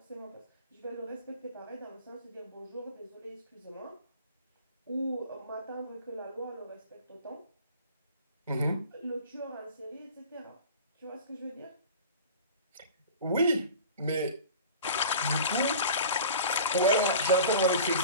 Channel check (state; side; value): inverted; both; correlation -0.40